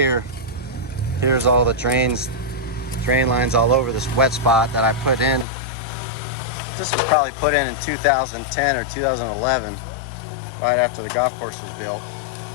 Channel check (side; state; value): right; drops out; at 5.5 s